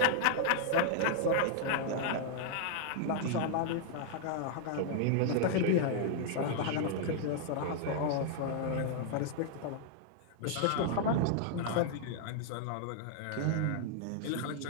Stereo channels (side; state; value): both; different; correlation -0.01